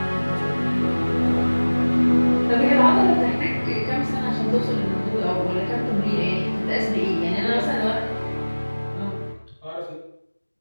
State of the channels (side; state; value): both; inverted; correlation -1.00